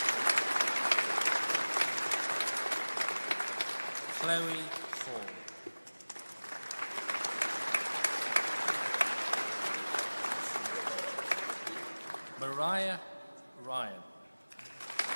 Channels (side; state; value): both; inverted; correlation -1.00